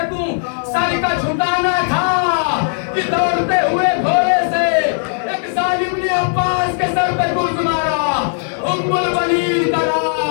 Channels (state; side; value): silent; right; 68 dB below the other